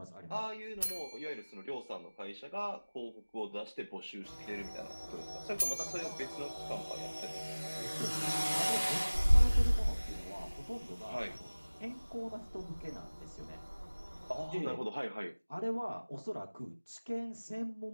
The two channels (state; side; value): inverted; both; correlation -1.00